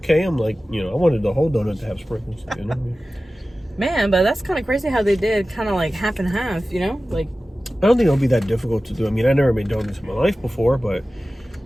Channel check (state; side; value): normal; both; correlation 0.96